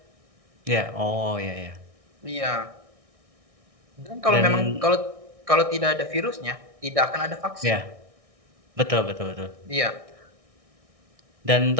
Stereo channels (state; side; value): late; left; 1.6 ms